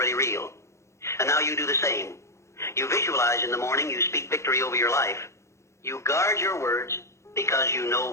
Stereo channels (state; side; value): late; right; 0.14 ms